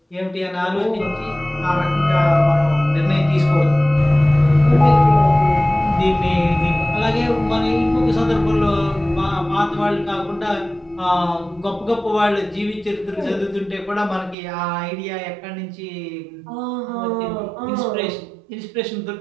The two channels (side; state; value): left; drops out; at 14.4 s